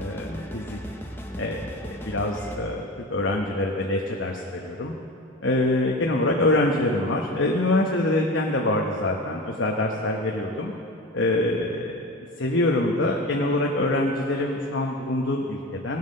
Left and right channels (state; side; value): normal; both; correlation 0.30